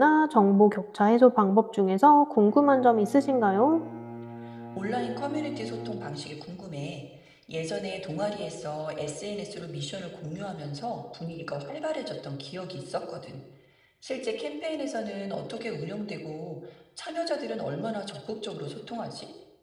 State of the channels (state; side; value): identical; both; correlation 1.00